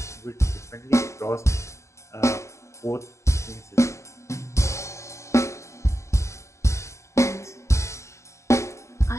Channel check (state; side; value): late; right; 0.14 ms